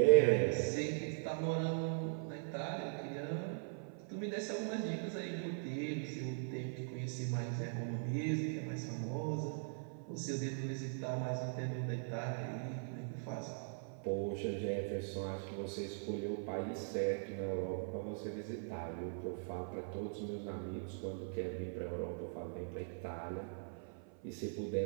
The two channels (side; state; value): left; silent; 51 dB below the other